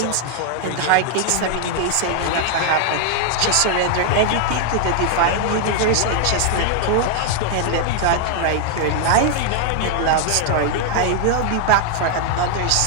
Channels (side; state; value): both; different; correlation 0.00